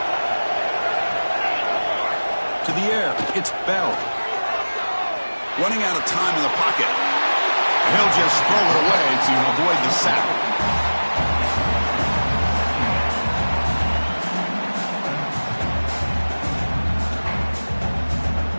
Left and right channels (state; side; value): inverted; both; correlation -1.00